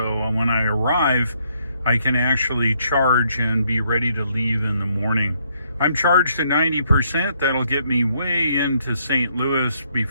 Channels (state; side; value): inverted; both; correlation -0.71